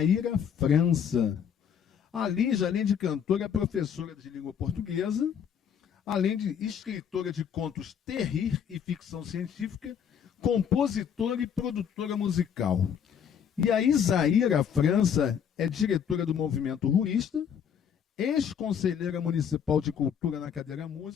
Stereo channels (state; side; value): quieter; right; 8.0 dB